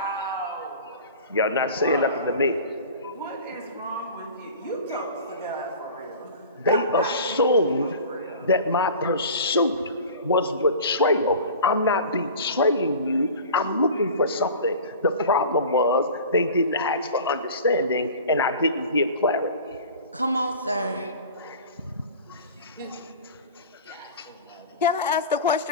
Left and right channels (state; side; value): inverted; both; correlation -0.39